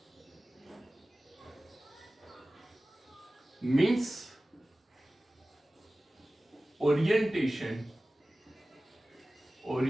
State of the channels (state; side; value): normal; both; correlation 0.97